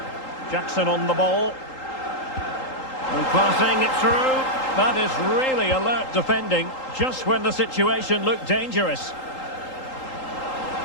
Jackson on the ball. And passing it through. That is really alert defending, just when the situation looked dangerous.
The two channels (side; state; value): right; late; 3.8 ms